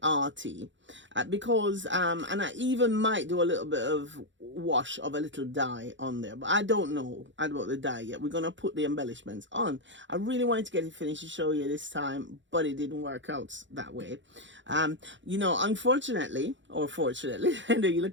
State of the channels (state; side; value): late; left; 0.54 ms